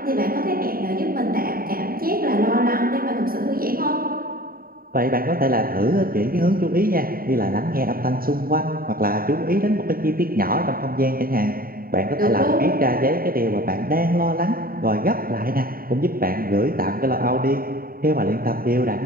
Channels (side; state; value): left; late; 0.43 ms